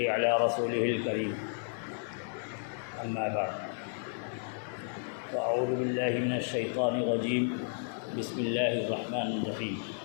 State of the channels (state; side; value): silent; right; digital silence